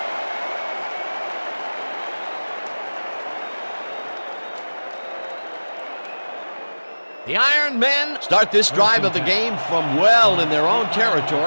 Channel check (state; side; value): inverted; both; correlation -1.00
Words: The Iron Men start this drive of the game from well in their own